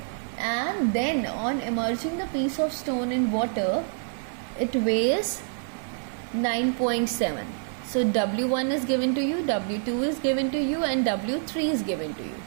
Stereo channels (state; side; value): silent; left; digital silence